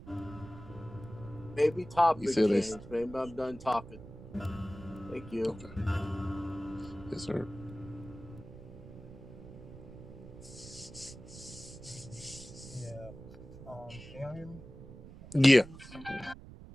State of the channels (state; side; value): noise; right; rumble, 15 dB below the sound